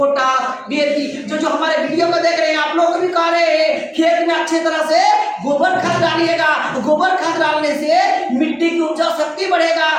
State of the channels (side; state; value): both; identical; correlation 1.00